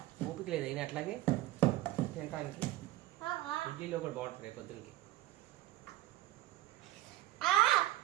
ఓపిక లేదు అయినా అట్లాగే తినడానికి. ఇడ్లీలో కూడా బాగుంటుంది రేపు పొద్దున్నకి.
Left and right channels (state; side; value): quieter; left; 15.8 dB